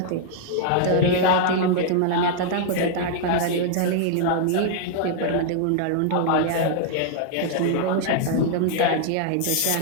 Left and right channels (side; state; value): both; different; correlation -0.01